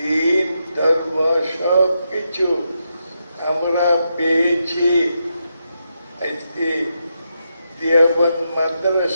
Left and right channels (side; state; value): both; inverted; correlation -0.84